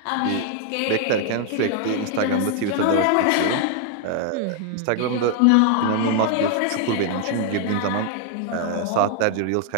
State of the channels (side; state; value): both; different; correlation 0.00